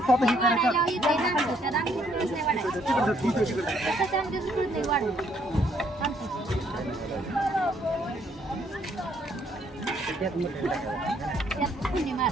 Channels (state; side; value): normal; both; correlation 0.68